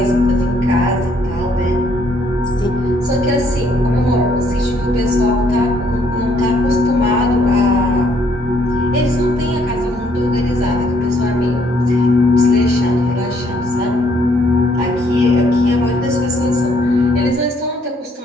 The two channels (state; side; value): normal; both; correlation 0.67